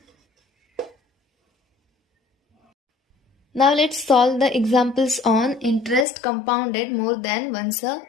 Now let's solve the examples on interest compounded more than once a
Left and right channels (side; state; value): right; drops out; at 6.1 s